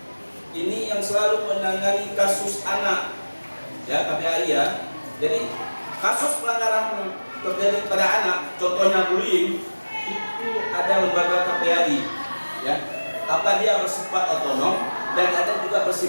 Ini yang selalu menangani kasus anak. Ya, KPAI ya. Jadi kasus pelanggaran terjadi pada anak, contohnya bullying, itu ada lembaga KPAI. Ya, apa dia bersifat otonom dan ada juga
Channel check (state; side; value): inverted; both; correlation -1.00